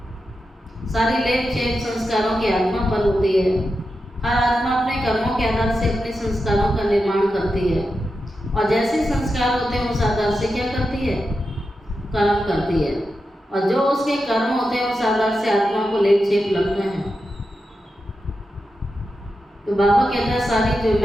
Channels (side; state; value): both; normal; correlation 0.89